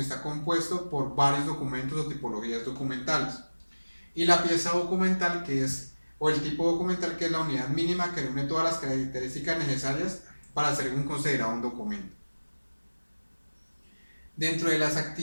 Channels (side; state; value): both; inverted; correlation -1.00